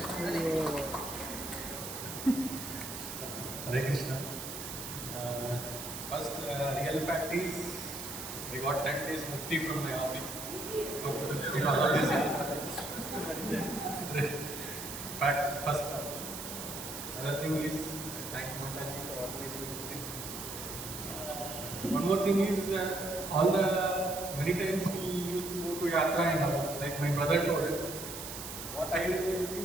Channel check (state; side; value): noise; right; hiss, 8 dB below the sound